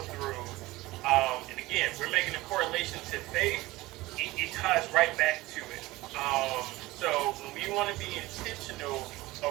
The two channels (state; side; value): quieter; left; 19.3 dB